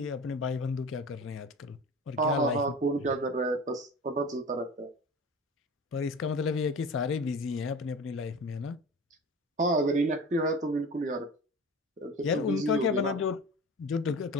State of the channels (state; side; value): normal; both; correlation 0.35